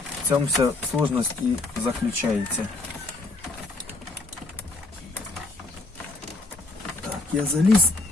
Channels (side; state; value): right; quieter; 3.3 dB